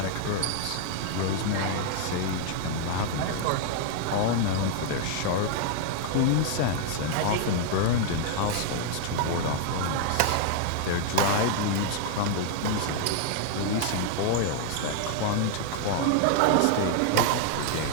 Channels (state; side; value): different; both; correlation 0.00